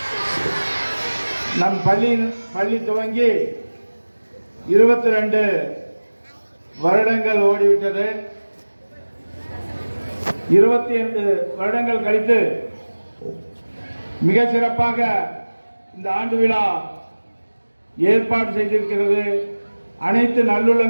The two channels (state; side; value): inverted; both; correlation -1.00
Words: நம் பள்ளி துவங்கி 22 வருடங்கள் ஓடிவிட்டது. 22 வருடங்கள் கழித்து மிக சிறப்பாக இந்த ஆண்டு விழா ஏற்பாடு செய்திருக்கிறது. அனைத்து